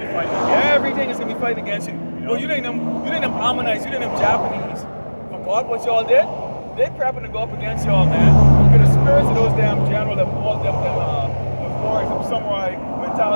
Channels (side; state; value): both; inverted; correlation -1.00